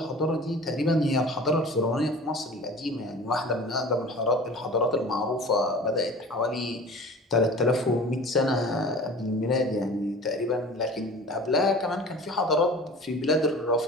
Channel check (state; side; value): normal; both; correlation 0.41